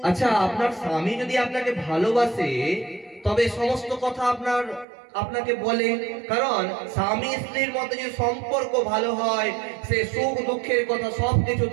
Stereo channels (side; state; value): left; drops out; at 4.9 s